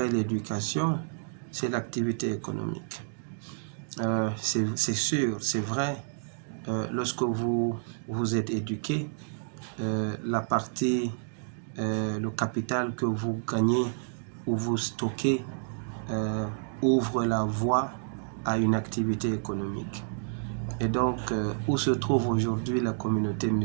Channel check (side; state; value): left; silent; digital silence